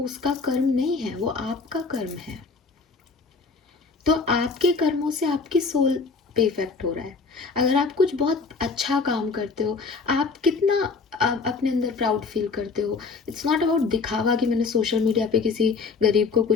उसका कर्म नहीं है, वो आपका कर्म है। तो आपके कर्मों से आपकी सोल पे इफेक्ट हो रहा है। अगर आप कुछ बहुत अच्छा काम करते हो, आप कितना अपने अंदर प्राउड फील करते हो। इट्स नॉट अबाउट दिखावा कि मैंने सोशल मीडिया पे किसी गरीब को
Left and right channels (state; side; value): quieter; right; 4.5 dB